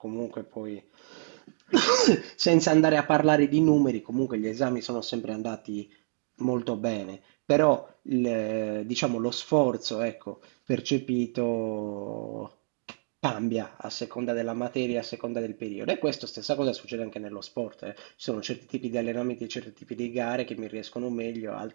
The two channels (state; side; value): silent; left; digital silence